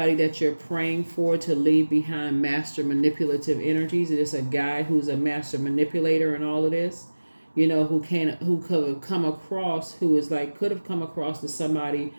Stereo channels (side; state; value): both; inverted; correlation -1.00